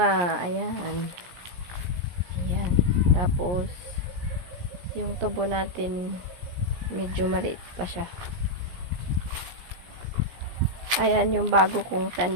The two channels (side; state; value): left; late; 17 ms